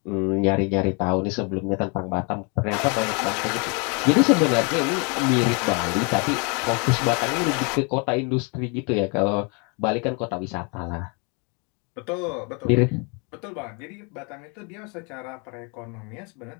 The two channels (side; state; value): right; quieter; 33.4 dB